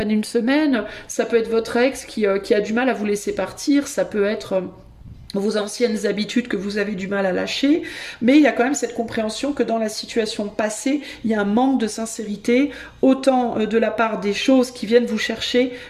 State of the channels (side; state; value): both; identical; correlation 1.00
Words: une semaine. Ça peut être votre ex qui a du mal à vous laisser partir, ça peut être vos anciennes habitudes que vous avez du mal à lâcher, mais il y a quand même cette compréhension que dans la situation passée, il y a un manque de sincérité, autant de la part des choses qui viennent vous chercher